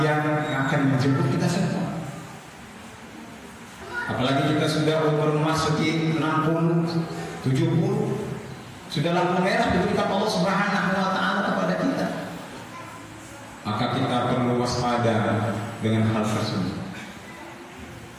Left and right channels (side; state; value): both; identical; correlation 1.00